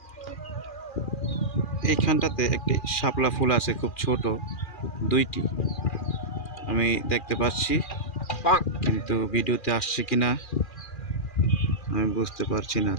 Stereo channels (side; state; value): right; late; 2.4 ms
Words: এইখানটাতে একটি শাপলা ফুল আছে, খুব ছোট, দুইটি আমি দেখতে পাচ্ছি, কিন্তু ভিডিওতে আসছে কিনা আমি বুঝতে পারছি না।